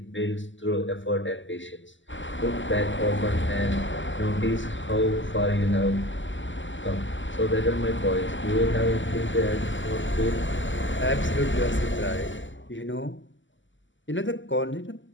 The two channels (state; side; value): late; right; 0.55 ms